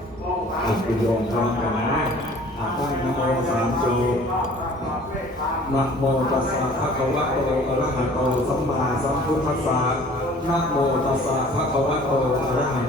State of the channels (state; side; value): normal; both; correlation 0.50